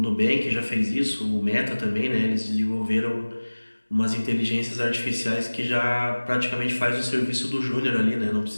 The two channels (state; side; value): inverted; both; correlation -1.00